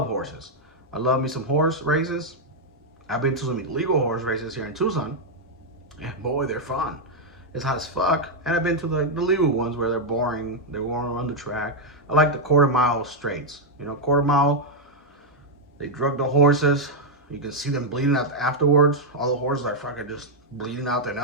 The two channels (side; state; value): both; normal; correlation -0.02